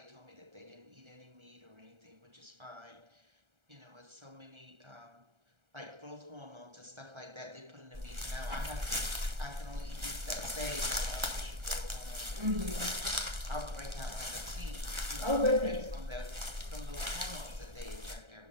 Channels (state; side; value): late; left; 1.3 ms